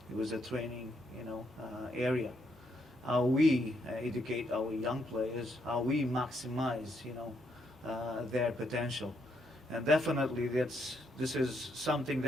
it was a training, area. How we educate our young players, how we maximize, their potential. And definitely this is something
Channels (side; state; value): both; normal; correlation 0.75